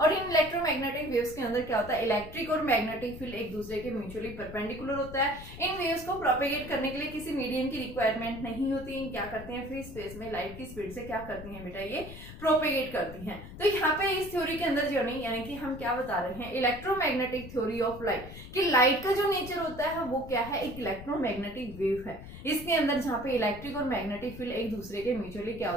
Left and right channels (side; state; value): left; noise; rumble, 13 dB below the sound